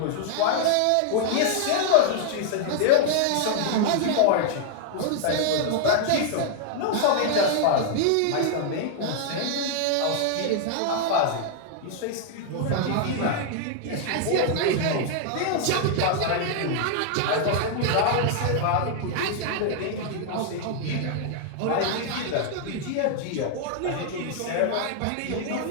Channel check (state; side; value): different; both; correlation 0.00